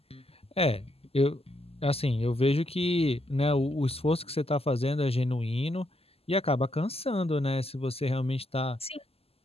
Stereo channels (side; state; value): right; late; 0.29 ms